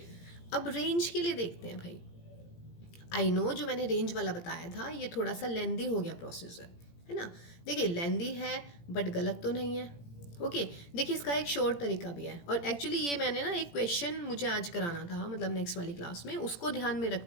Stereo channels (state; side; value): late; right; 17 ms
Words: अब रेंज के लिए देखते हैं भाई। आई नो, जो मैंने रेंज वाला बताया था ये थोड़ा सा लेंदी हो गया प्रोसीजर, है ना? देखिए, लेंदी है बट गलत तो नहीं है। ओके, देखिए इसका एक शॉर्ट तरीका भी है, और एक्चुअली ये मैंने ना एक क्वेश्चन मुझे आज कराना था, मतलब नेक्स्ट वाली क्लास में, उसको ध्यान में